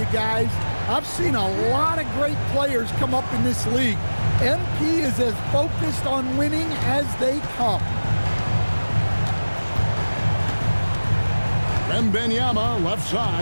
guys, I've seen a lot of great players come up in this league. MP is as focused on winning as they come. Wembanyama left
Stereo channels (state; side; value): inverted; both; correlation -1.00